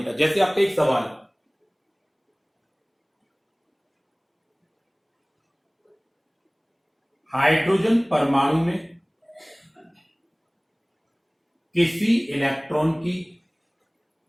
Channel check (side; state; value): both; identical; correlation 1.00